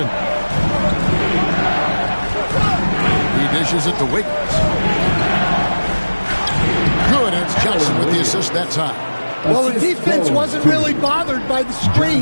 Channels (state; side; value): inverted; both; correlation -1.00